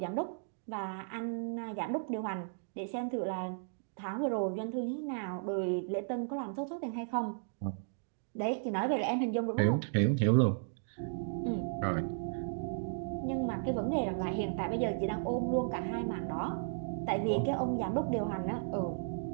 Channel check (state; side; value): silent; left; digital silence